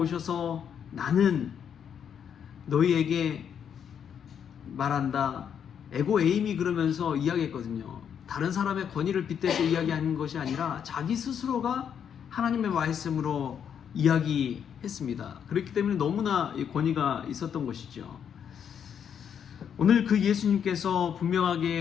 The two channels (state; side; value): quieter; right; 8.1 dB